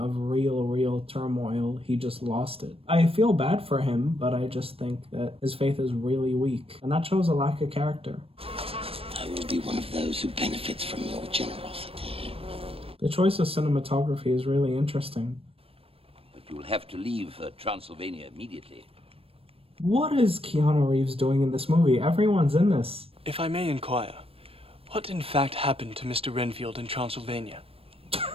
real turmoil, he just lost it. I feel bad for him, but I just think that his faith is really weak, and that shows a lack of character. I will be one of those who benefits from your generosity. The choice of cinematography is really interesting. But you'll have to leave Transylvania immediately. What is Keanu Reeves doing in this movie? Everyone's in this. If I may inquire, what in fact happened to Mr. Renfield in Transylvania?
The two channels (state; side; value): late; left; 0.28 ms